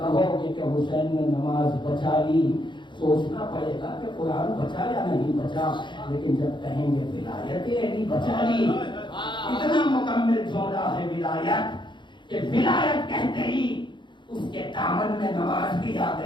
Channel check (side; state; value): right; late; 0.23 ms